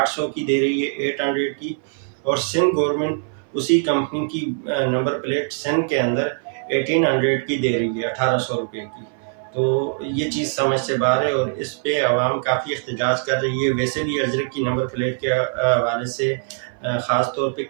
کی دے رہی ہے 800 کی، اور سندھ گورنمنٹ اسی کمپنی کی نمبر پلیٹ سندھ کے اندر 1800 کی دے رہی ہے 1800 روپے کی۔ تو یہ چیز سمجھ سے باہر ہے، اور اس پہ عوام کافی احتجاج کر رہی ہے۔ ویسے بھی اجرک کی نمبر پلیٹ کے حوالے سے خاص طور پہ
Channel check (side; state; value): left; silent; 59 dB below the other